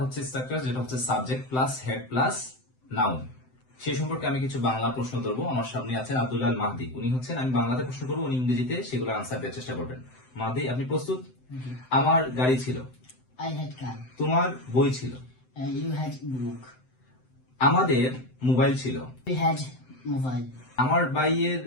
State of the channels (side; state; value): right; late; 7.8 ms